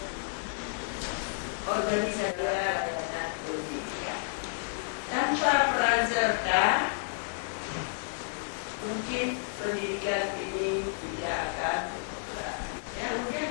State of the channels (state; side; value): silent; right; digital silence